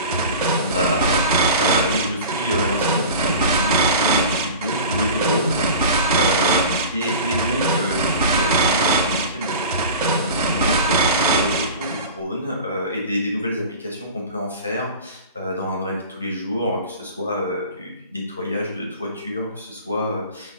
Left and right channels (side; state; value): both; inverted; correlation -0.36